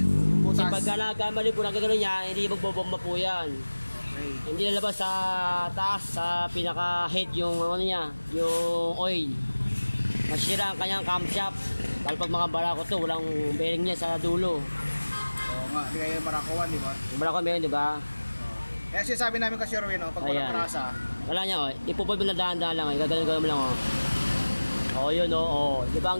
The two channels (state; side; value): inverted; both; correlation -1.00